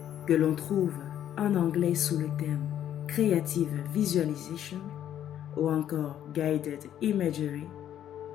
que l'on trouve en anglais sous le terme Creative Visualization ou encore Guided Imagery,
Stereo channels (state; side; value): quieter; right; 10.7 dB